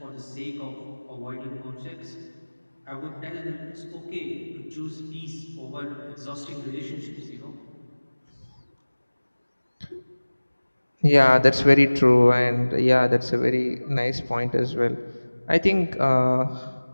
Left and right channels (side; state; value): both; inverted; correlation -1.00